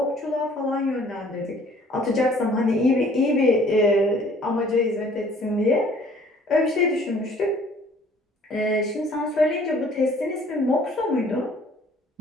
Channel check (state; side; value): normal; both; correlation 0.56